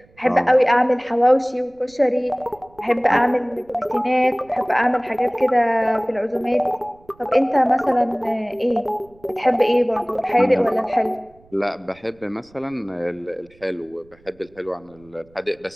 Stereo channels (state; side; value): noise; right; rumble, 29 dB below the sound